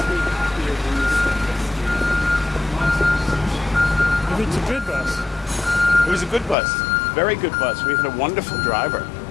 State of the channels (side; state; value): right; drops out; at 6.6 s